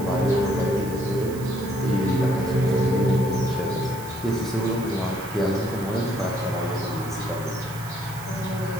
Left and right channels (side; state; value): right; noise; hiss, 16 dB below the sound